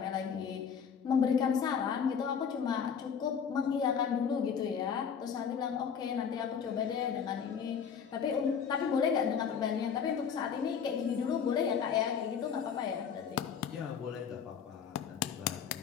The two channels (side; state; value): right; quieter; 7.1 dB